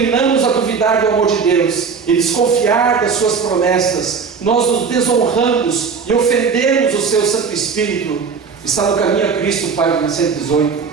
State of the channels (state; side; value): quieter; left; 5.6 dB